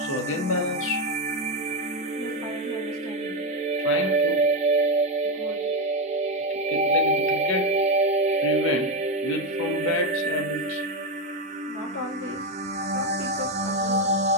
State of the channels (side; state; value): both; normal; correlation 0.09